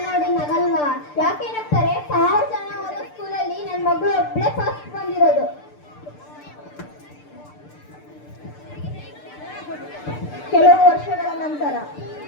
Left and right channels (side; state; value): right; late; 6.7 ms